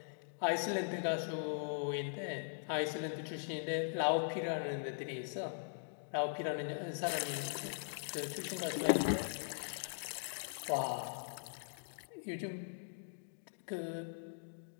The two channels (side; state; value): right; silent; digital silence